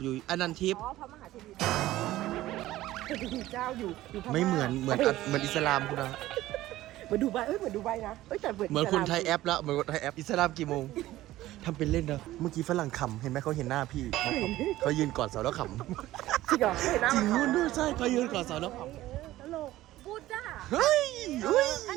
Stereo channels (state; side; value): quieter; left; 15.6 dB